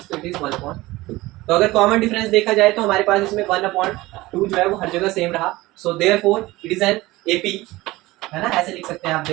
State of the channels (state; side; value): quieter; left; 19.3 dB